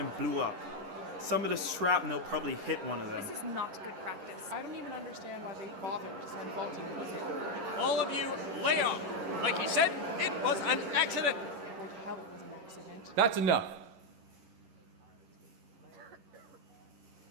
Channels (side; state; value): left; late; 11 ms